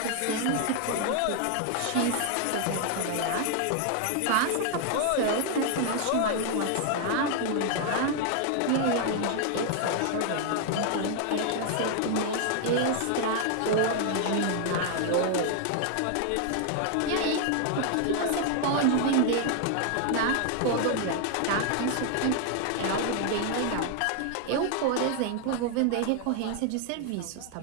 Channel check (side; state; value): both; different; correlation 0.00